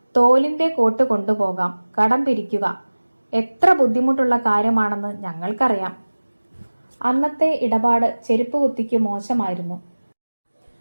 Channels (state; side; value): inverted; both; correlation -1.00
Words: തോലിന്റെ കോട്ട് കൊണ്ടുപോകാം, കടം പിരിക്കുക എത്ര ബുദ്ധിമുട്ടുള്ള കാര്യമാണെന്ന് ഞങ്ങൾക്കറിയാം. അന്നത്തെ ഇടപാട് ചെരുപ്പ് കുത്തിക്ക് മോശമായിരുന്നു.